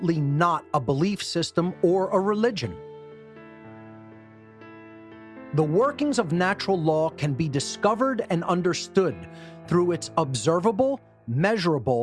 not a belief system or a religion. The workings of natural law can be discovered and understood through its observable,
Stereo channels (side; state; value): both; identical; correlation 1.00